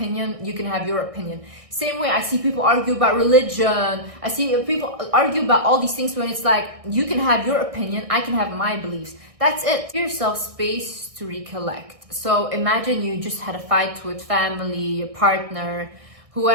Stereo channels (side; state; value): left; late; 1.6 ms